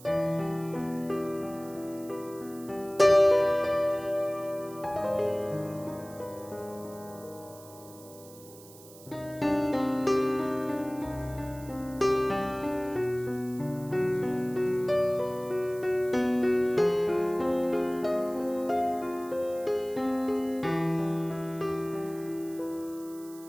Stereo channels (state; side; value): noise; right; hiss, 21 dB below the sound